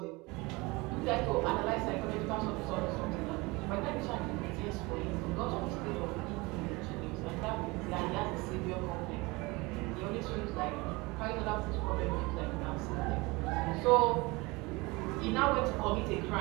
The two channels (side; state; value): left; quieter; 24.1 dB